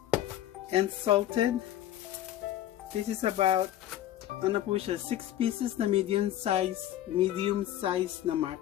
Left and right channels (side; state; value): right; quieter; 12.7 dB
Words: and salted. This is about ano po siya, 6 pieces na medium size na